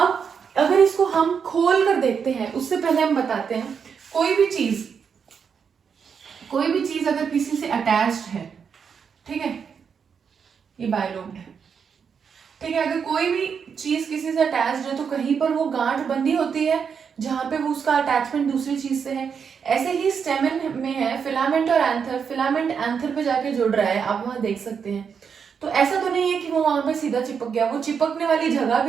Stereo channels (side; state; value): left; quieter; 6.6 dB